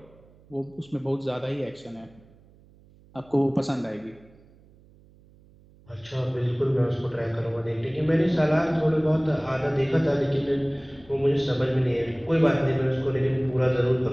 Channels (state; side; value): noise; right; hum, 27 dB below the sound